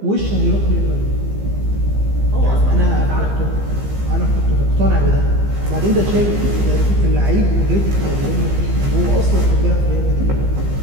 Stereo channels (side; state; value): left; late; 15 ms